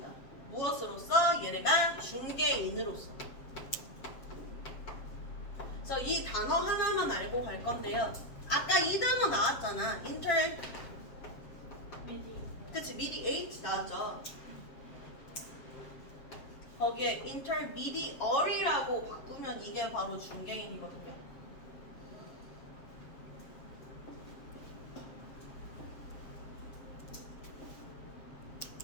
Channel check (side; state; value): right; late; 7.5 ms